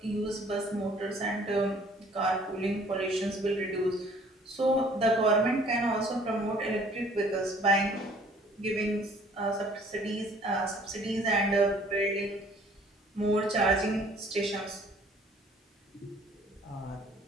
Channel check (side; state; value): both; normal; correlation 0.56